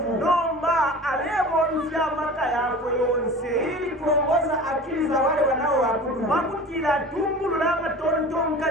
nomba alebomvya amaka yako yonse ili kuongoza akili za wale wanaoabudu. pakutila atungulula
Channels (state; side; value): normal; both; correlation 0.38